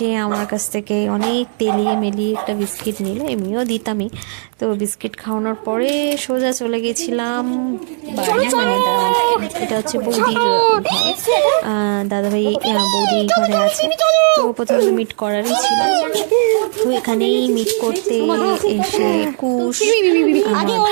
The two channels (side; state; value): left; silent; 65 dB below the other